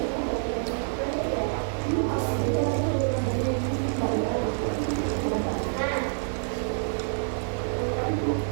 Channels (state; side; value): silent; left; 59 dB below the other